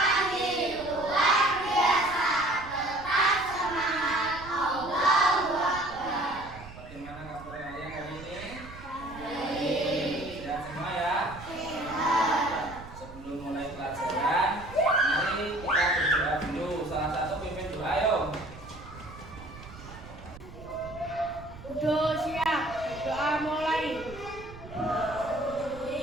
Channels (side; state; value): right; noise; rumble, 16 dB below the sound